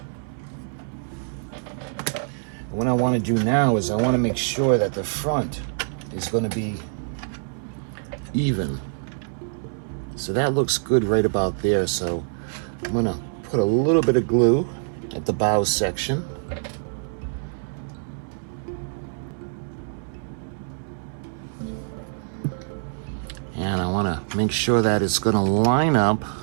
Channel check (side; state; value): left; silent; 62 dB below the other